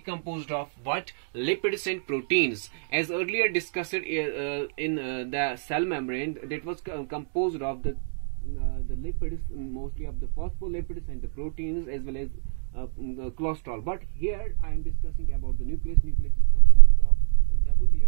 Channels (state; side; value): silent; left; digital silence